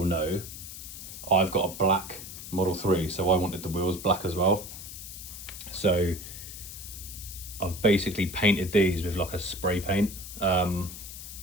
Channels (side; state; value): left; noise; hiss, 11 dB below the sound